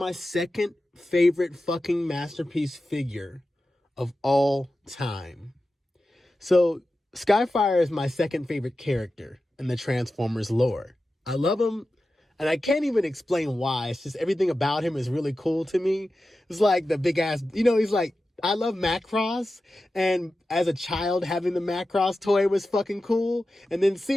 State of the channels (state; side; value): normal; both; correlation 0.93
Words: second favorite fucking masterpiece figure of all time. So, Skyfire is my second favorite character in the Transformers lore. I love him, and I can't even explain why. It's just everything about him is really cool to me. It's like the big ass, he's like, I love Macross, and as a child, having the Macross toy was fucking cool. And then